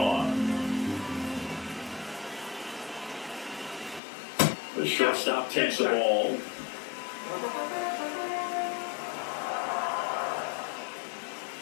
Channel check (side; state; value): right; drops out; at 4.0 s